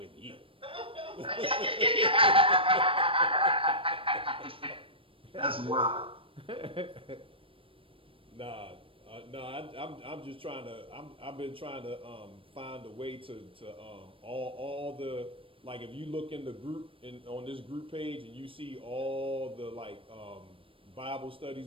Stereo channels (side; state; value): left; late; 0.26 ms